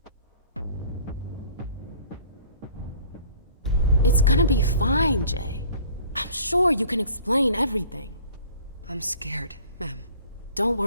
It's gonna be fine, Jay. I'm sure you can explain everything. I'm scared, ma'am. Don't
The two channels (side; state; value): both; inverted; correlation -0.49